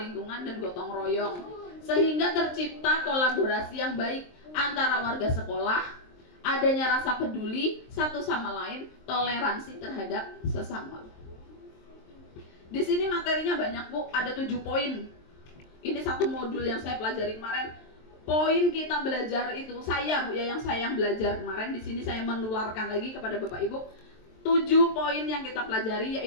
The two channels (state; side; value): late; right; 23 ms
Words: dan gotong royong, sehingga tercipta kolaborasi yang baik antara warga sekolah, adanya rasa peduli satu sama lain, toleransi terhadap sesama. Di sini materinya banyak Bu, ada 7 poin. Ini satu modul yang saya pelajari kemarin. Poin kita belajar itu, saya Bu ya, yang belajar kemarin, di sini saya menularkan lagi kepada Bapak Ibu. 7 poin yang kita pelajari,